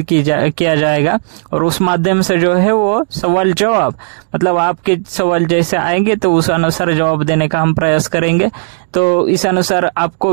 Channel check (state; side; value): silent; left; digital silence